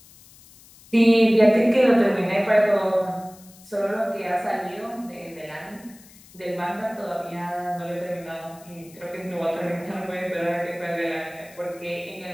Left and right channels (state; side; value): noise; left; hiss, 24 dB below the sound